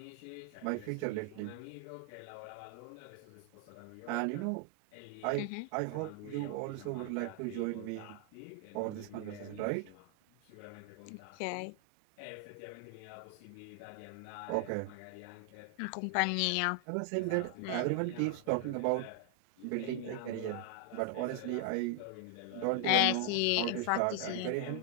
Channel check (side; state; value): both; different; correlation 0.00